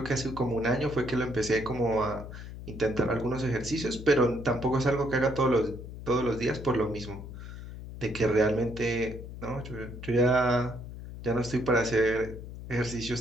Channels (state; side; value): noise; left; hum, 11 dB below the sound